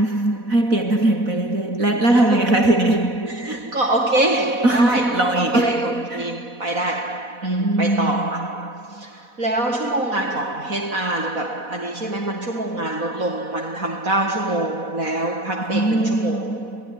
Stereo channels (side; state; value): left; late; 4.1 ms